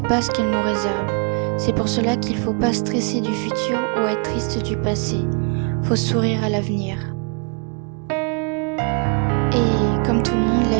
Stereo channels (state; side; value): quieter; left; 39.7 dB